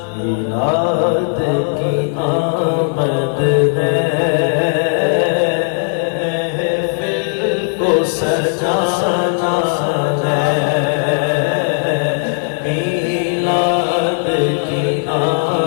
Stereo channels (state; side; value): silent; right; 68 dB below the other